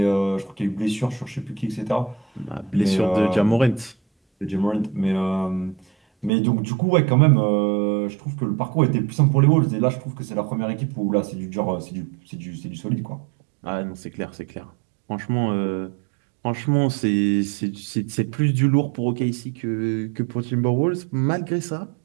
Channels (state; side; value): drops out; left; at 6.3 s